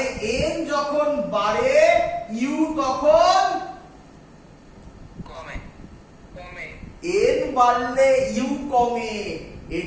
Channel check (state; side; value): identical; both; correlation 1.00